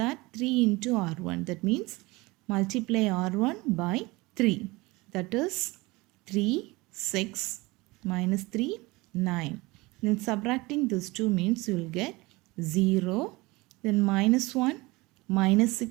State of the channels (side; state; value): left; quieter; 22.6 dB